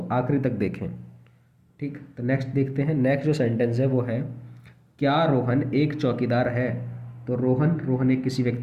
आखिरी तक देखें। ठीक, तो नेक्स्ट देखते हैं। नेक्स्ट जो सेंटेंस है वो है, क्या रोहन एक चौकीदार है, तो रोहन एक किसी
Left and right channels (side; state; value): both; identical; correlation 1.00